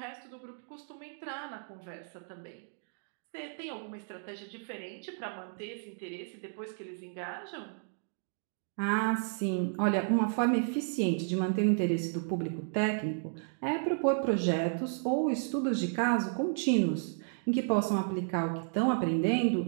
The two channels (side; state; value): left; silent; digital silence